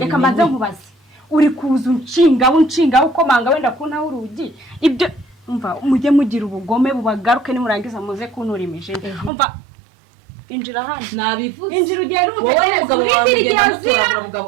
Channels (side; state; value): left; drops out; at 9.3 s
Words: mbanze nkubaze uri kuza unshinga ukomanga wenda kuntaho urugi ibyo umva mujye mugira ubugome bubagaruke nimurangiza muze kuntura imijini umva injira hano nabivuze injira ugende umutegereze